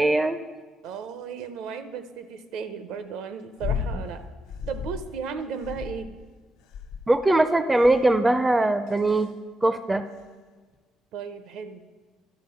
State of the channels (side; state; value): both; normal; correlation 0.88